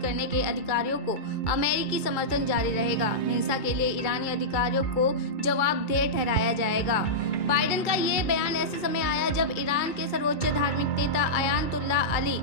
करने के अधिकारियों को अमेरिकी समर्थन जारी रहेगा। हिंसा के लिए ईरानी अधिकारियों को जवाबदेह ठहराया जाएगा। बाइडेन का ये बयान ऐसे समय आया जब ईरान के सर्वोच्च धार्मिक नेता अयातुल्लाह अली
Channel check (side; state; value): right; late; 2.3 ms